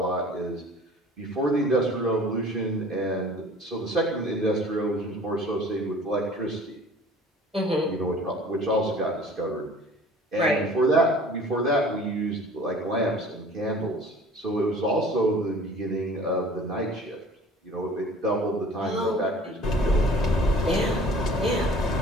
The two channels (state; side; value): normal; both; correlation 0.48